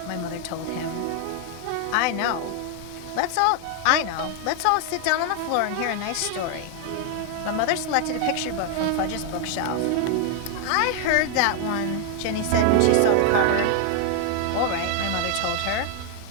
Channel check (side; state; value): both; different; correlation 0.00